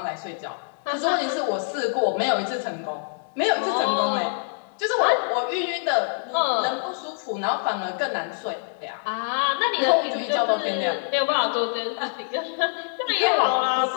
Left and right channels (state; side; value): silent; right; digital silence